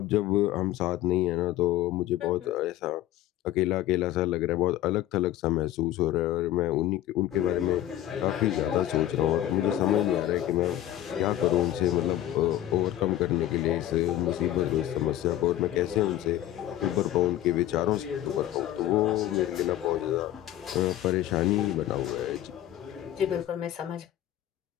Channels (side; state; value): right; quieter; 13.2 dB